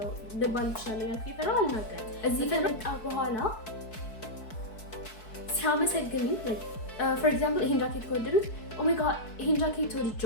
ልባል እችላለሁ ያልኩ ይፈራል አልናገርም። እዚህ ከመጣ በኋላ ሲያመሰግኝ like for example ይሄን ጃኬት ከወደዱት oh my god ይሄን ጃኬት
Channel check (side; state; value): right; late; 4.6 ms